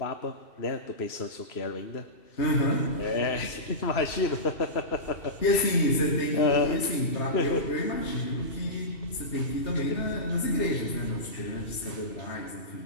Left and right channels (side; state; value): right; late; 2.7 ms